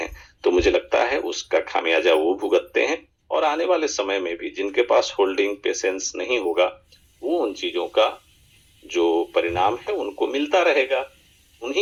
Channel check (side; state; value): both; identical; correlation 1.00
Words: तो मुझे लगता है उसका खामियाजा वो भुगतते हैं, और आने वाले समय में भी जिनके पास होल्डिंग पेशेंस नहीं होगा, वो उन चीजों का जो परिणाम है उनको मिलता रहेगा,